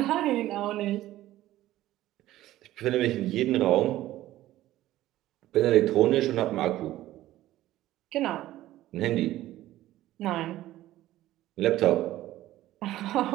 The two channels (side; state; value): left; quieter; 14.9 dB